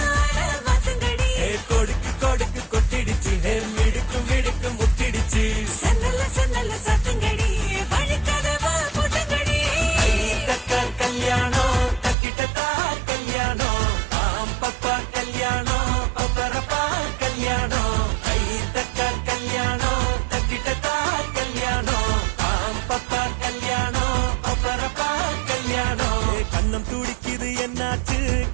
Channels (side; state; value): left; drops out; at 12.2 s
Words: கொடுக்கு கொடுக்கு கொட்டிடுச்சு மிடுக்கு மிடுக்கு முட்டிடுச்சு சன்னல்ல சன்னல்ல சத்துங்கடி வழிக்கதவா முட்டுங்கடி. தக்கா கல்யாணம் தக்கிட்டதா கல்யாணம் பாம்பப்பா கல்யாணம் பப்பரப்பா கல்யாணம். கை தக்கா கல்யாணம் தக்கிட்டதா கல்யாணம் பாம்பப்பா கல்யாணம் பப்பரப்பா கல்யாணம். கண்ணும் துடிக்குது என்னாச்சு